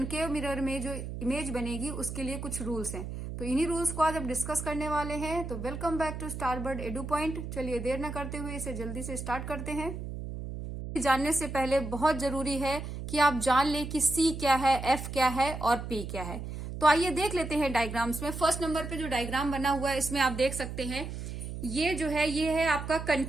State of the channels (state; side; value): noise; right; hum, 7 dB below the sound